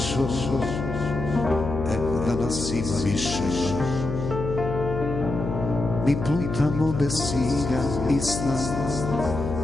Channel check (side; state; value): left; noise; hum, 5 dB below the sound